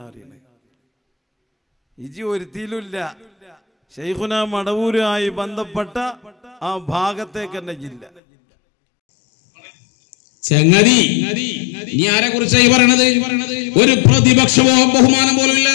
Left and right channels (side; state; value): right; drops out; at 8.1 s